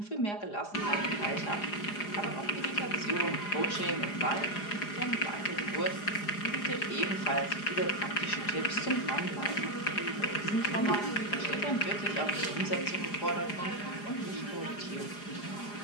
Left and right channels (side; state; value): right; late; 4.9 ms